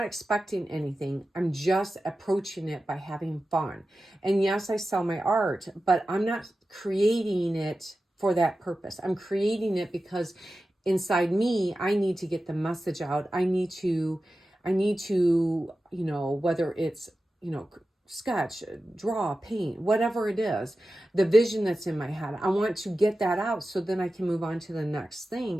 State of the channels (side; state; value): both; normal; correlation 0.93